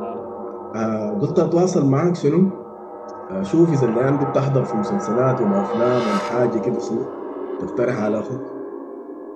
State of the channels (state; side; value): identical; both; correlation 1.00